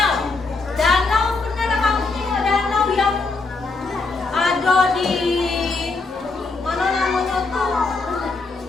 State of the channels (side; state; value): right; quieter; 3.9 dB